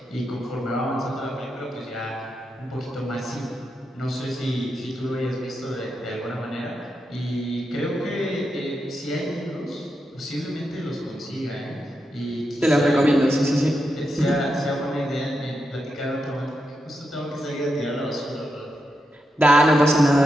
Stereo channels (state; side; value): normal; both; correlation 0.86